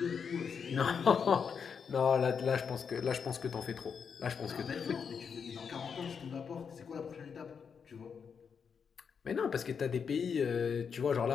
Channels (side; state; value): right; quieter; 6.5 dB